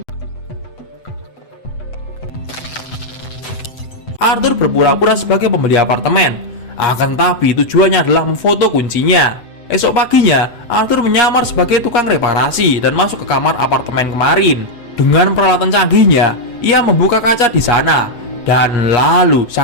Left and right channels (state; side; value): late; right; 8.0 ms